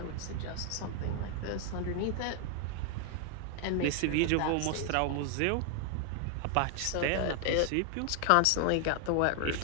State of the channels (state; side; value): different; both; correlation 0.00